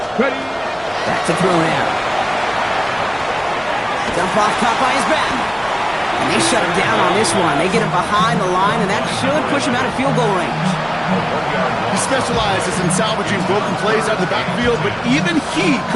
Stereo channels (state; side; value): identical; both; correlation 1.00